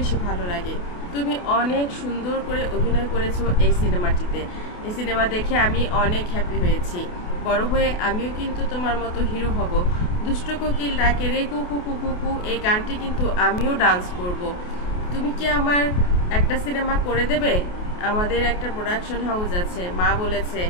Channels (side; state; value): right; late; 28 ms